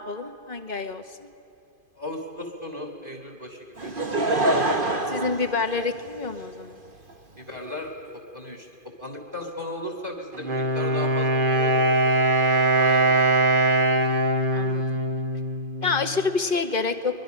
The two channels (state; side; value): late; left; 2.5 ms